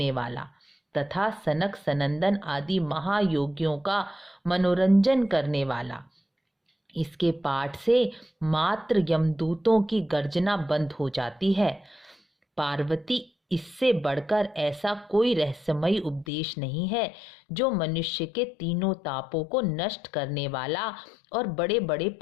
वाला तथा सनक सनंदन आदि महायोगियों का मनोरंजन करने वाला। इसके पाठ से मात्र यमदूतों की गर्जना बंद हो जाती है। पार्वती, इससे बढ़कर ऐसा कोई रहस्यमयी उपदेश नहीं है जो मनुष्य के तीनों तापों को नष्ट करने वाला और बड़े बड़े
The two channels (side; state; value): right; drops out; at 16.2 s